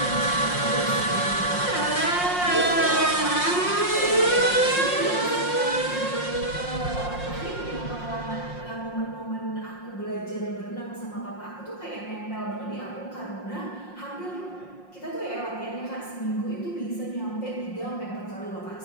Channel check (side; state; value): right; late; 5.6 ms